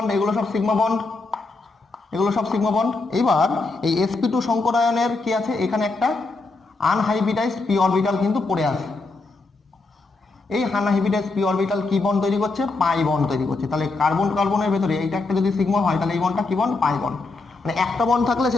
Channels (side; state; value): right; quieter; 3.6 dB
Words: এগুলো সব সিগমা বন্ড, এগুলো সব সিগমা বন্ড। এবার এই sp2 সংকরায়নের কি আছে, এখানে একটা আনহাইব্রিডাইজড p অরবিটাল কিন্তু পড়ে আছে। এই আনহাইব্রিডাইজড p অরবিটাল কি বন্ড তৈরি করছে, পাই বন্ড তৈরি করছে। তাহলে কার্বনের ভেতরে এইটা একটা যদি সিগমা হয়, তাহলে এই বন্ডটা কি বন্ড, পাই বন্ড। মানে একটা বন্ড থাকলে